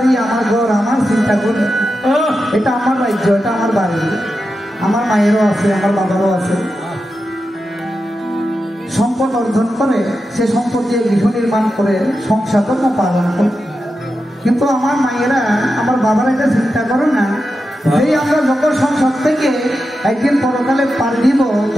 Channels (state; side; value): normal; both; correlation 0.89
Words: আমার ঘর, আমার চিন্তা করে, এটা আমার রাজ্য, এটা আমার বাড়ি, আমার মায়েরও আছে, আমার বাবারও আছে, সম্পদ সম্পদ অর্জন করে সে সম্পদ দিয়ে গৃহ নির্মাণ করে সংসার ধর্ম পালন করে। কিন্তু আমার মায়েরা, আমার বাবারা এটা চিন্তা করে না, এই আমরা যখন সংসার থেকে একদিন পরকালে পার দিব